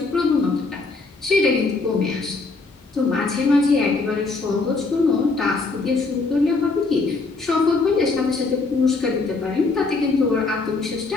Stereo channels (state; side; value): quieter; right; 3.8 dB